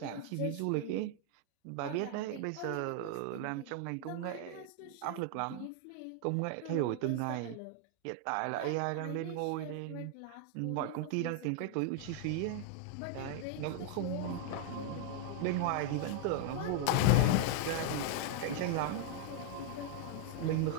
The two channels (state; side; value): different; both; correlation 0.00